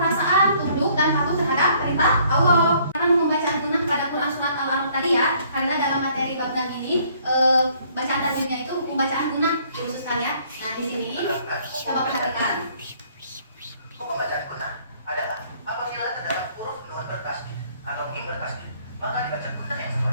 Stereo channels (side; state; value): both; inverted; correlation -0.62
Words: tunduk dan patuh terhadap perintah Allah. Karena pembacaan guna pada Quran surat Al-A'raf tadi ya, karena dalam materi bab 6 ini bacaan tajwidnya itu pembacaan guna dikhususkan ya. Nah, di sini coba perhatikan. Hukum bacaan guna adalah apabila terdapat huruf nun bertasdid atau mim bertasdid, maka dibaca guna yang